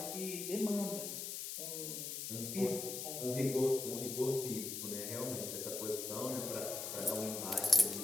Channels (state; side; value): noise; left; hiss, 5 dB below the sound